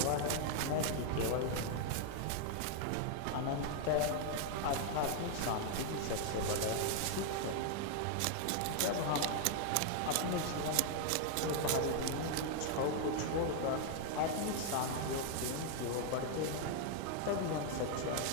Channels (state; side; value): different; both; correlation 0.00